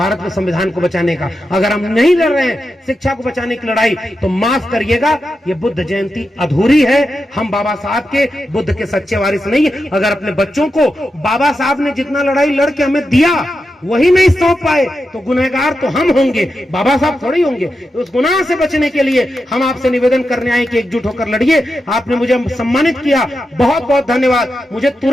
के संविधान को बचाने का। अगर हम नहीं लड़ रहे हैं शिक्षा को बचाने की लड़ाई, तो माफ करिएगा, ये बुद्ध जयंती अधूरी है। हम बाबा साहब के, बुद्ध के सच्चे वारिस नहीं। अगर अपने बच्चों को बाबा साहब ने जितना लड़ाई लड़ के हमें दिया वही नहीं सौंप पाए, तो गुनहगार तो हम होंगे, बाबा साहब थोड़ी होंगे। तो उस गुनाह से बचने के लिए हम आपसे निवेदन करने आए कि एकजुट होकर लड़िए। आपने मुझे सम्मानित किया, बहुत बहुत धन्यवाद। मुझे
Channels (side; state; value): both; normal; correlation 0.88